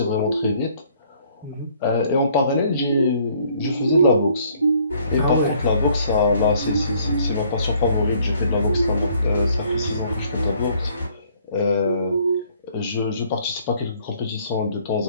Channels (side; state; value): both; inverted; correlation -0.62